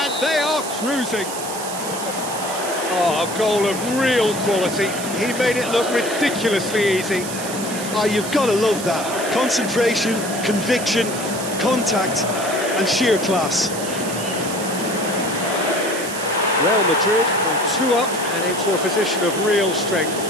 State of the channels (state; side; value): noise; right; hiss, 8 dB below the sound